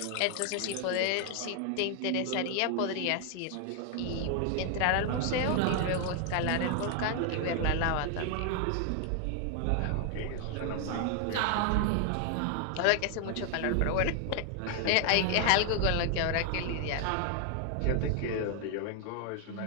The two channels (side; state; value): both; different; correlation 0.00